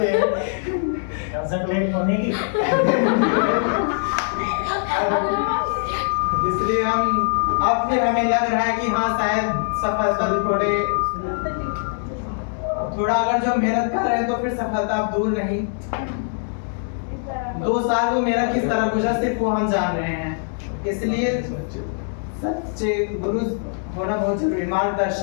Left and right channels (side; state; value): right; silent; digital silence